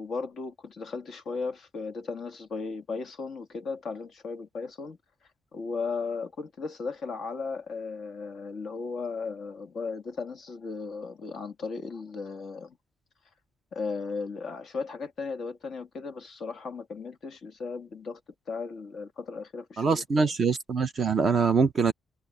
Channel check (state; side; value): normal; both; correlation 0.75